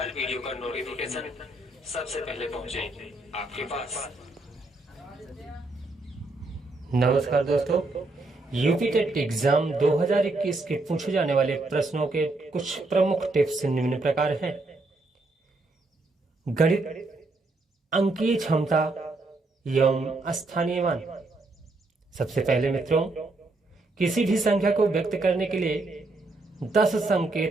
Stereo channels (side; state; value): left; quieter; 3.1 dB